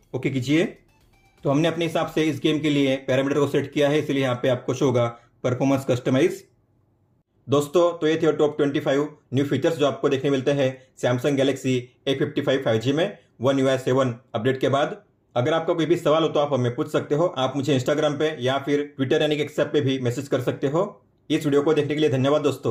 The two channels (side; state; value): both; identical; correlation 1.00